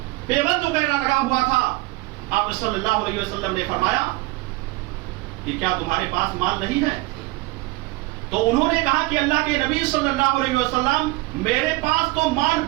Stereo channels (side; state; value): left; quieter; 21.8 dB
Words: پیبند وغیرہ لگا ہوا تھا. آپ صلی اللہ علیہ وسلم نے فرمایا کہ کیا تمہارے پاس مال نہیں ہے؟ تو انہوں نے کہا کہ اللہ کے نبی صلی اللہ علیہ وسلم, میرے پاس تو مال